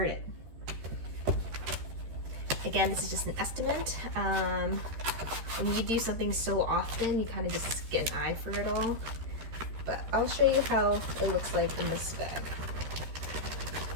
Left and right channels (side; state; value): left; late; 13 ms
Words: Again, this is just an estimate. When you do something so often, you kind of just get an eye for it all. But I'll show you how it looks like in this bag.